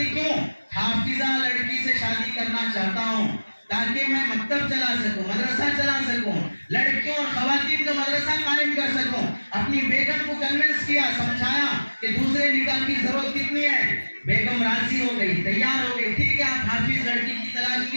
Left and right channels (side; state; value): both; inverted; correlation -1.00